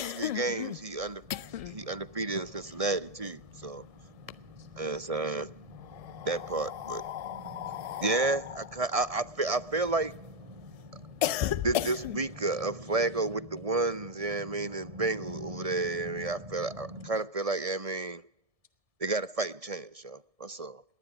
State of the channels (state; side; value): late; left; 1.7 ms